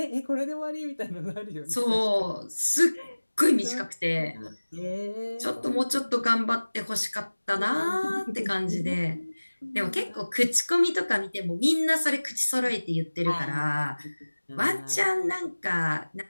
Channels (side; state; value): both; inverted; correlation -1.00